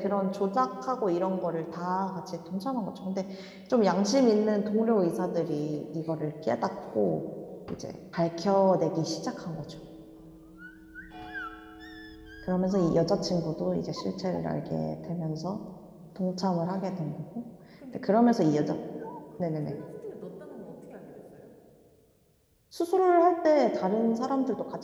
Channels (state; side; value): identical; both; correlation 1.00